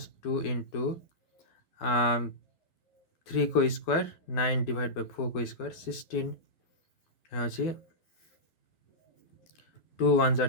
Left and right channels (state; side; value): late; right; 12 ms